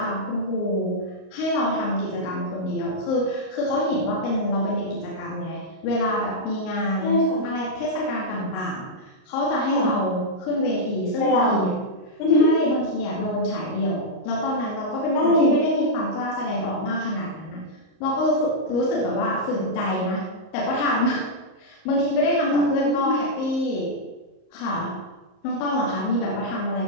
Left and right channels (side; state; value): right; late; 38 ms